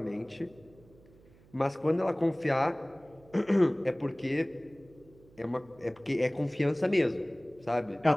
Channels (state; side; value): noise; right; hum, 26 dB below the sound